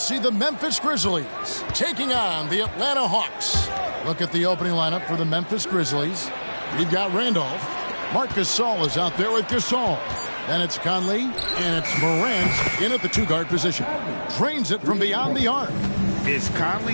the Memphis Grizzlies taking on the Atlanta Hawks. Look at the opening lineup for the Memphis Grizzlies. We've got Randolph. Marc Gasol is out there with Gasol. Then it's Conley, and it's Morant in at the two-guard position. Drains it from beyond the arc. It's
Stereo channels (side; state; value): both; inverted; correlation -1.00